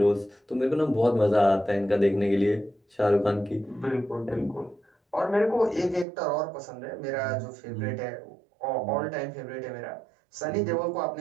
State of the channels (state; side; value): drops out; left; at 6.1 s